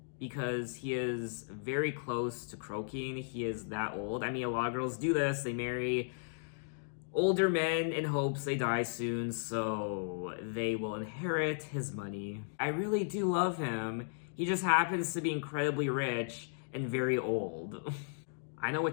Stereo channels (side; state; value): right; silent; digital silence